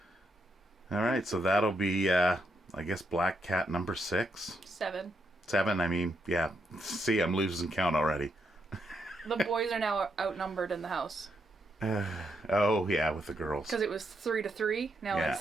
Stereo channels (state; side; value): normal; both; correlation 0.79